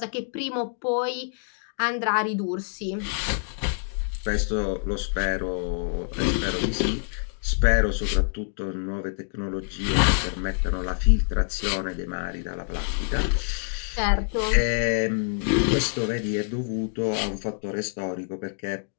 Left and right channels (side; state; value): right; silent; 61 dB below the other